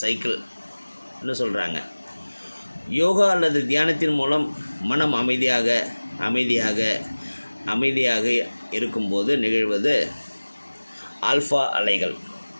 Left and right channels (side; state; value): both; inverted; correlation -1.00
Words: சைக்கிள் சொல்கிறாங்க. யோகா அல்லது தியானத்தின் மூலம் மனம் அமைதியாக இருக்கும்போது நிகழ்வது ஆல்ஃபா அலைகள்.